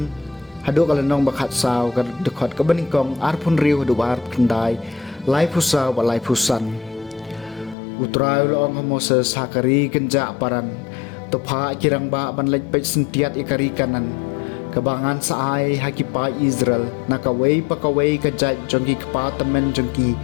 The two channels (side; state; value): right; drops out; at 7.8 s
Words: hadu kalenong bakhat saw kadikot kabaningkong arpun riu hadubaar kendai lai pusa wa lai pusan utrai loong Moses hakari kenja paran topa kirang ba banlej pej sentiat ikari kanan kabangan saai hakipai Israel nakawei pakawei kajat jongki kepatamen jongki